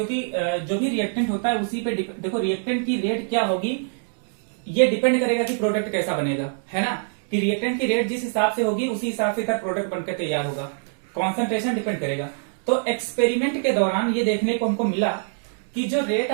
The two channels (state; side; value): silent; left; digital silence